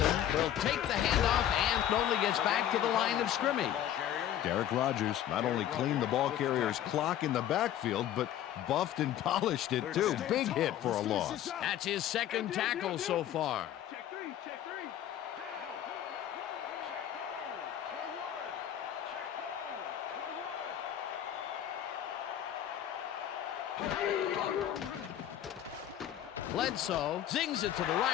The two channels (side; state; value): right; quieter; 11.2 dB